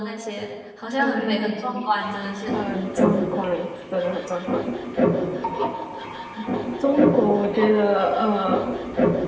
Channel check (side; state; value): both; identical; correlation 1.00